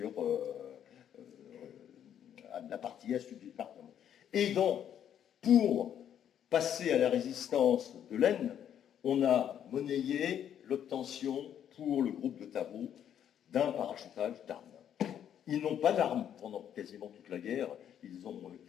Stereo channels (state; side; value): quieter; right; 9.6 dB